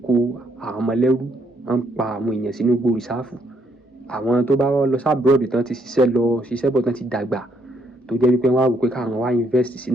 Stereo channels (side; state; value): both; normal; correlation 0.71